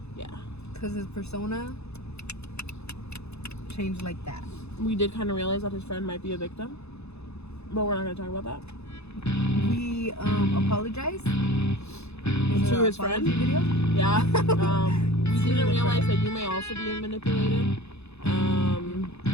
yeah. Because his persona changed like that. We did kind of realize that his friend might be a victim, but we're not going to talk about that. We apologize to his friend. Video? Yeah. We didn't realize that you may also be manipulated. You're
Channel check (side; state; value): right; late; 0.80 ms